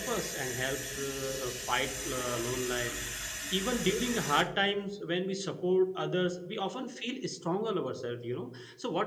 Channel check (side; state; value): both; identical; correlation 1.00